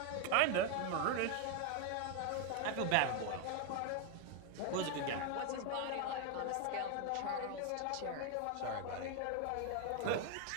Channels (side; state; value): both; different; correlation 0.01